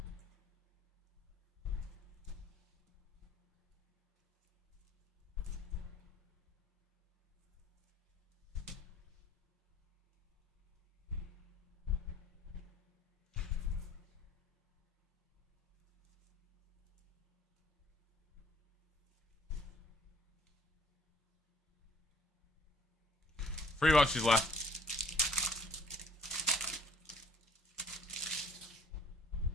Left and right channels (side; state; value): both; normal; correlation 0.55